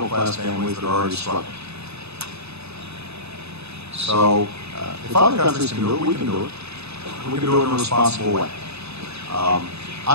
families that are already struggling. So, if other countries can do it, we can do it. We can do it in a responsible way.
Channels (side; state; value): left; late; 0.79 ms